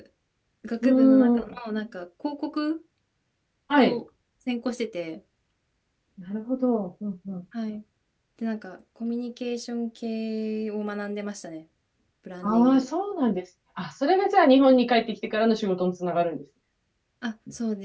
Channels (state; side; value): identical; both; correlation 1.00